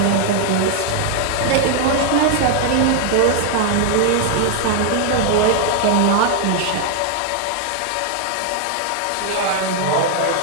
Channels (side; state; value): both; different; correlation 0.00